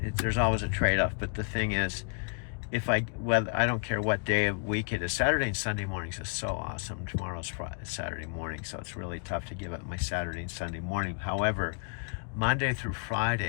always a trade-off, but the thing is, I don't care what day of week it is. Saturday and Sunday mornings is so awesome. Tomorrow's Saturday morning, so it's really tough to give up my Saturday and Sunday morning. However, Monday through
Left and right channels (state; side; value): quieter; right; 39.5 dB